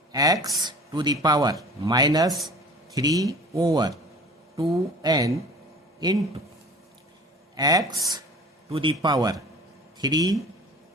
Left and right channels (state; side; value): normal; both; correlation 0.43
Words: to the power minus 3 over 2n into x to the power 3